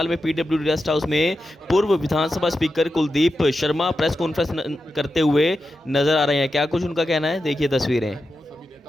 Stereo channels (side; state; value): both; normal; correlation 0.90